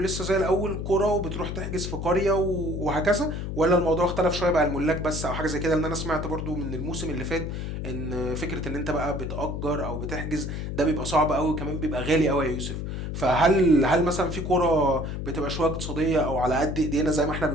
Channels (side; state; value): left; noise; hum, 5 dB below the sound